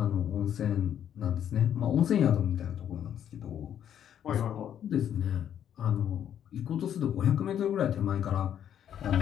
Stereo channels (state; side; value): quieter; right; 9.7 dB